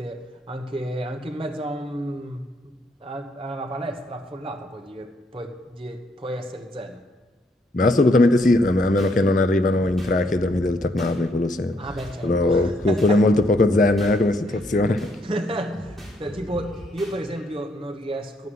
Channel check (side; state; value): both; normal; correlation 0.72